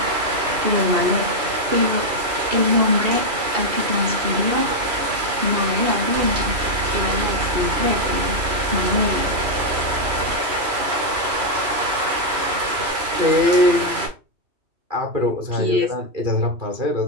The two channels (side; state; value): left; late; 3.0 ms